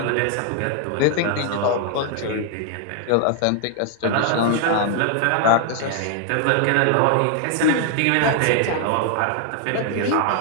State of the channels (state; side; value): different; both; correlation 0.00